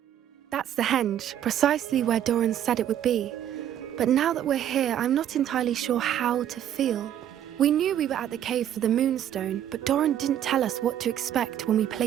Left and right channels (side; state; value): left; quieter; 10.7 dB